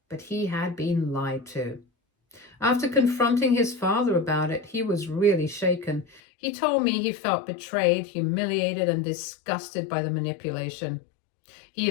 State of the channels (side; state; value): right; drops out; at 6.2 s